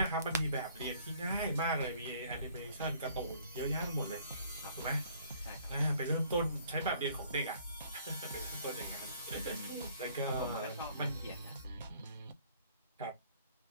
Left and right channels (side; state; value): both; inverted; correlation -0.58